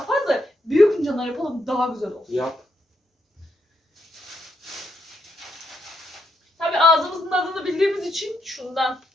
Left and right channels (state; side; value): normal; both; correlation 0.78